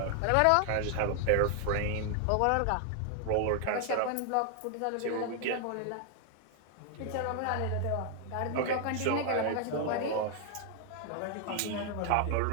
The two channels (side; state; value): both; different; correlation 0.00